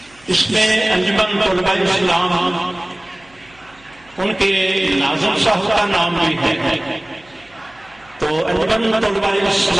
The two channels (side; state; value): right; noise; hum, 29 dB below the sound